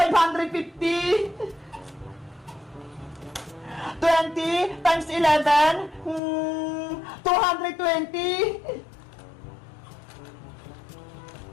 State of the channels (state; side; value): drops out; right; at 6.2 s